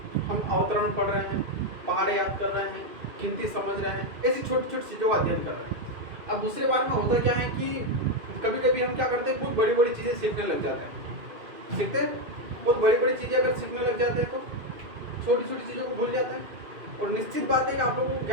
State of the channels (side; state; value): left; late; 2.5 ms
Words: हम अवतरण पढ़ रहे हैं, पहाड़े याद कर रहे हैं, गिनती समझ रहे हैं, ऐसी छोटी छोटी चीज़ों का अध्ययन कर रहे हैं। अब दूसरे बार में होता क्या है कि कभी कभी हम क्या करते हैं, बहुत बड़ी बड़ी चीज़ें सीखने लग जाते हैं। सीखते हैं बहुत बड़ी बड़ी चीज़ें अगर सीखने लग जाते हैं तो छोटी छोटी चीज़ों को भूल जाते हैं। और निश्चित बात है कि आप लोगों को